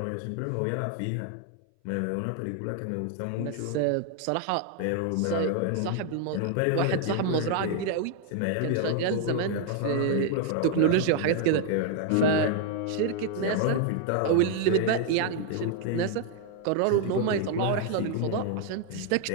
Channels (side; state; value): both; different; correlation 0.00